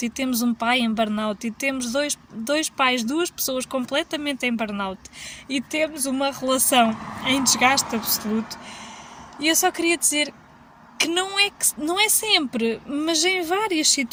e temos um pai em burnout e temos dois pais, duas pessoas completamente em burnout e temos uma relação em desgaste absoluto. E eu só queria dizer que não é sempre, mas em várias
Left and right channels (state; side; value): identical; both; correlation 1.00